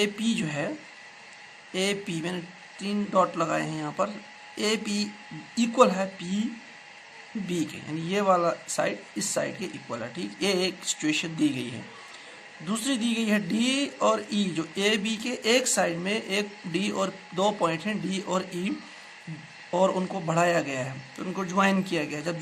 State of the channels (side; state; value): both; identical; correlation 1.00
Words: पी जो है, ए पी मैंने 3 डॉट लगाए हैं यहाँ पर, ए पी इक्वल है पी बी के, यानी ये वाला साइड इस साइड के इक्वल है। ठीक, ये एक सिचुएशन दी गई है। दूसरी दी गई है डी और ई, जो ए बी के एक साइड में एक डी और 2 पॉइंट हैं डी और ई, और उनको बढ़ाया गया है, तो उनको ज्वाइन किया गया है। जब